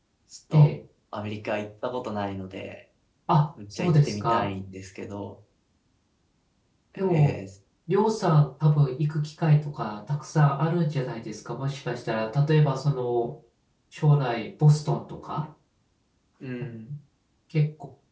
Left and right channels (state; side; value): identical; both; correlation 1.00